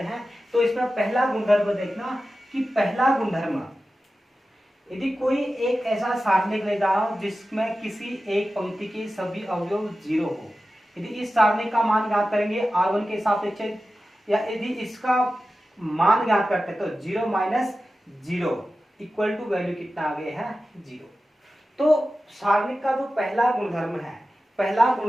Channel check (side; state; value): both; normal; correlation 0.94